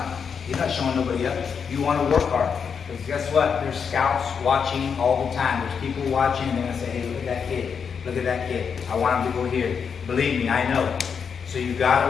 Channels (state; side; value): quieter; right; 6.5 dB